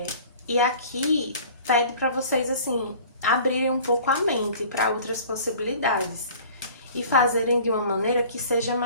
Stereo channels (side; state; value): both; inverted; correlation -0.46